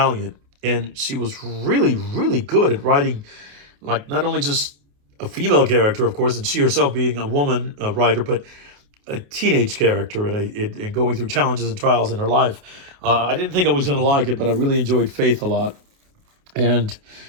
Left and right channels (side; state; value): left; late; 28 ms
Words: and she was really really good at writing, like not only just a female character, of course, and she herself being a woman writer, but a teenage character and going through challenges and trials in her life. I didn't think I was going to like it, but I really enjoyed Faith a lot. And